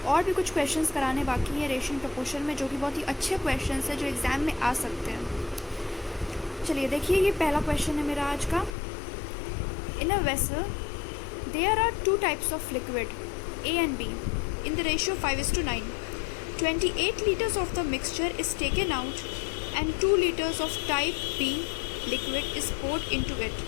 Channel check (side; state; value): right; drops out; at 8.8 s